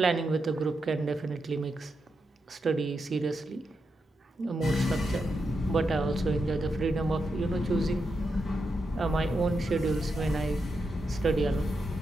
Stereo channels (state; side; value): normal; both; correlation 0.85